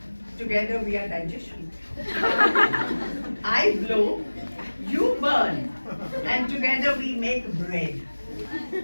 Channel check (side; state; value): both; inverted; correlation -1.00